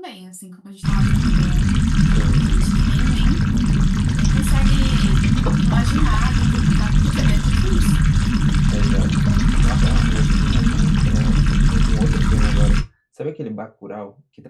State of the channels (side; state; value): both; identical; correlation 1.00